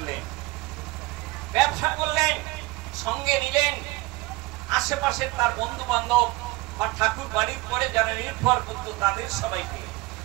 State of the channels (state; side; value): quieter; left; 21.7 dB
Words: করলেন, সঙ্গে নিলেন আশেপাশে তার বন্ধু বান্ধব বা ঠাকুর বাড়ির পরে যারা নির্ভর করত তাদের সবাইকে।